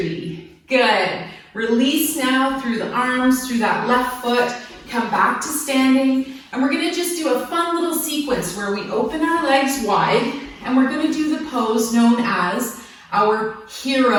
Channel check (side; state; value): both; identical; correlation 1.00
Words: Good. Release now through the arms, through that left foot. Come back to standing. And we're gonna just do a fun little sequence where we open our legs wide, and we're gonna do the pose known as our